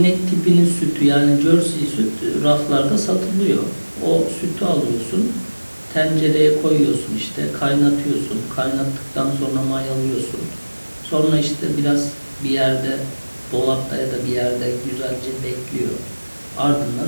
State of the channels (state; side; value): inverted; both; correlation -1.00